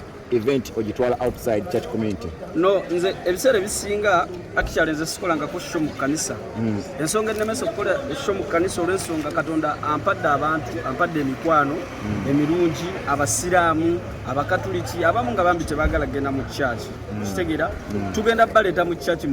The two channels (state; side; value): identical; both; correlation 1.00